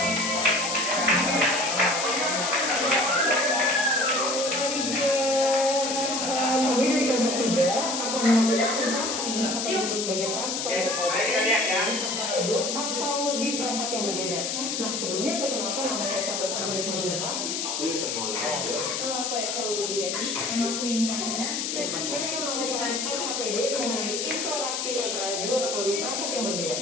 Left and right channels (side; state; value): left; noise; hiss, 2 dB below the sound